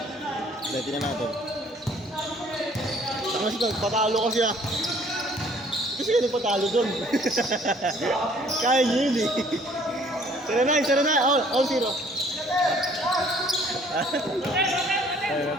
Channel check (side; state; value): both; normal; correlation 0.58